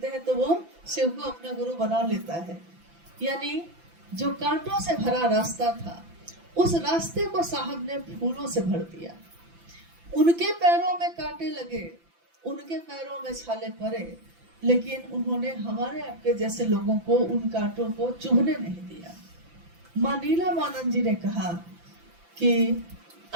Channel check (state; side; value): late; left; 5.9 ms